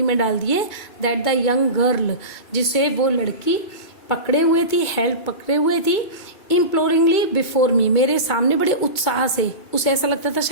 में डाल दिए, दैट द यंग गर्ल जिसे वो लड़की पकड़े हुए थी, हेल्ड पकड़े हुए थी, इम्प्लोरिंगली बिफोर मी मेरे सामने बड़े उत्साह से, उसे ऐसा लगता था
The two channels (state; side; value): late; right; 2.2 ms